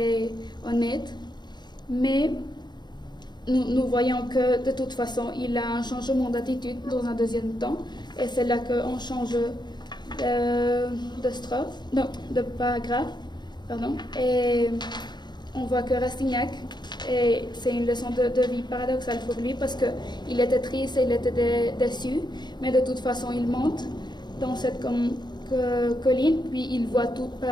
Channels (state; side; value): late; right; 0.21 ms